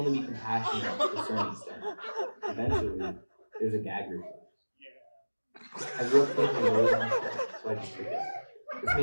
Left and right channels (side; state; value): both; inverted; correlation -1.00